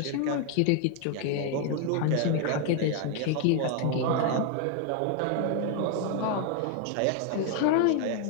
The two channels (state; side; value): different; both; correlation 0.00